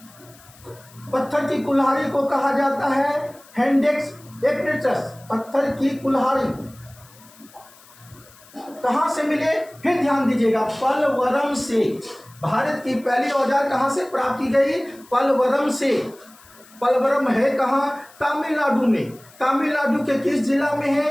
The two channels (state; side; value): noise; left; hiss, 25 dB below the sound